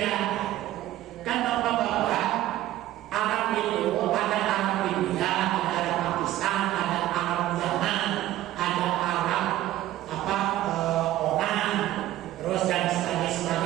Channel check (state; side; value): quieter; left; 14.4 dB